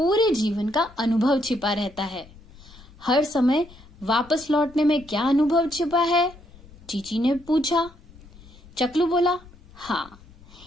जीवन का अनुभव छिपा रहता है. हर समय वापस लौटने में क्या अनुभव छिपा है? चीची ने पूछा. चकलू बोला, हाँ,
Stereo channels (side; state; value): left; noise; rumble, 22 dB below the sound